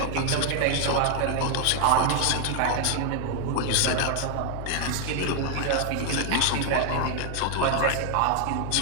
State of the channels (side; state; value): both; different; correlation 0.00